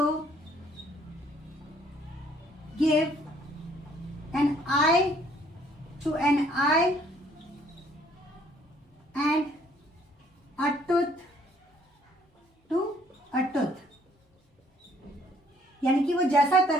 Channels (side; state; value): both; normal; correlation 0.62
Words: give an eye to an eye and a tooth to a tooth। यानी कि वो जैसा